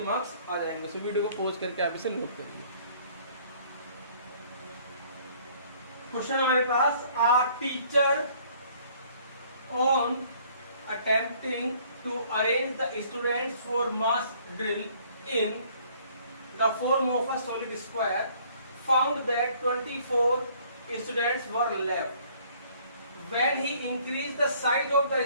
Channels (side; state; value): both; inverted; correlation -0.59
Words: मार्क्स आ जाएंगे। सो वीडियो को पॉज करके आप इसे नोट करिए। क्वेश्चन हमारे पास, our teacher on attempting to arrange the students for mass drill in the form of a solid square found that 24 students were left. When he increased the size of the